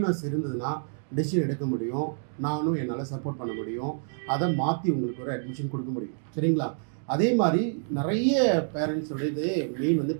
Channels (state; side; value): silent; left; digital silence